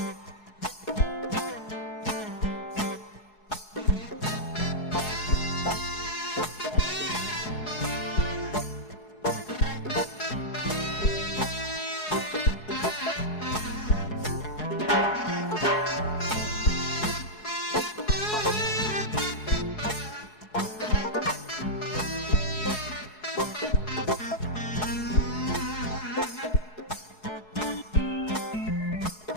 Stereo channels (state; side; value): late; right; 4.7 ms